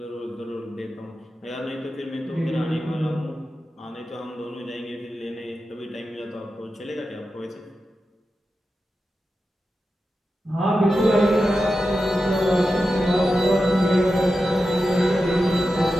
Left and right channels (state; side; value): normal; both; correlation 0.91